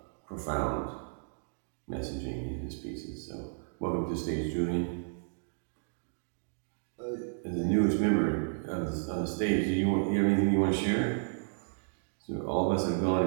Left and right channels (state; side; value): silent; left; digital silence